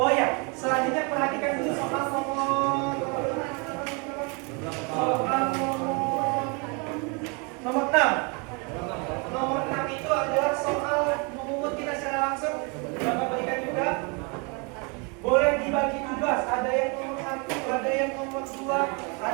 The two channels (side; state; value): left; quieter; 32.4 dB